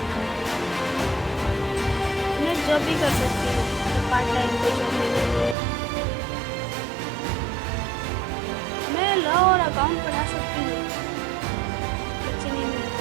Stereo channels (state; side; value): drops out; left; at 5.6 s